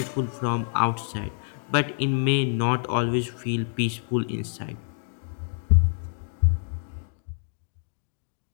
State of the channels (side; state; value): right; silent; digital silence